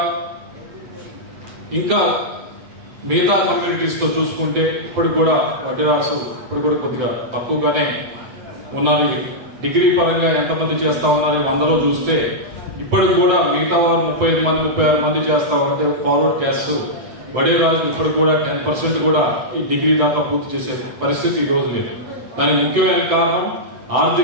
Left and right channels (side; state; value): left; late; 7.8 ms